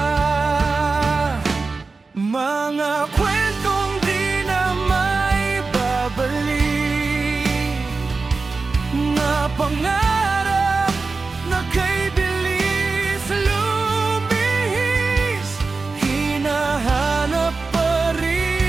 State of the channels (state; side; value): quieter; left; 4.1 dB